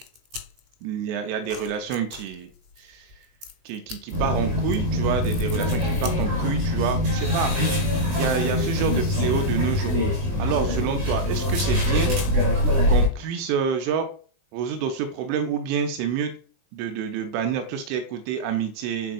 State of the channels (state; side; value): late; left; 20 ms